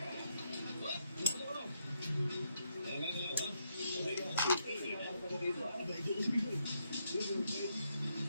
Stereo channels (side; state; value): both; inverted; correlation -0.77